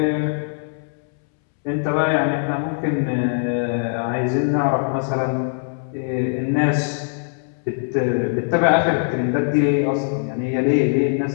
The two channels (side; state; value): right; silent; 65 dB below the other